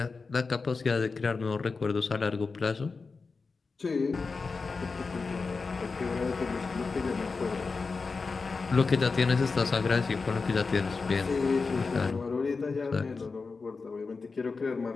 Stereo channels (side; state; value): right; quieter; 4.4 dB